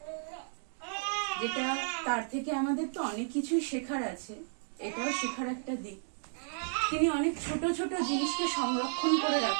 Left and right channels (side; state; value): left; silent; digital silence